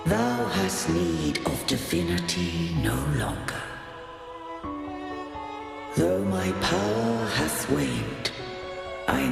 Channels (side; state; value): both; identical; correlation 1.00